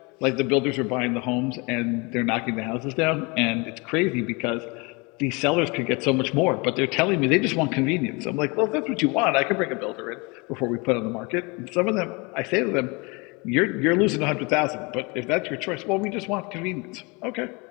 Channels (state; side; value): quieter; right; 28.3 dB